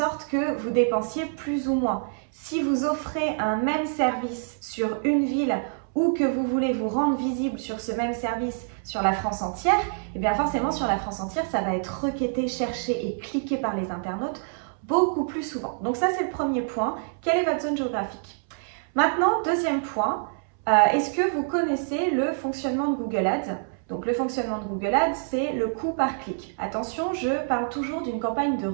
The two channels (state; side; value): silent; left; 61 dB below the other